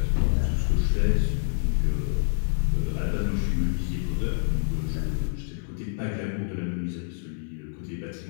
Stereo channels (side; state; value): right; silent; digital silence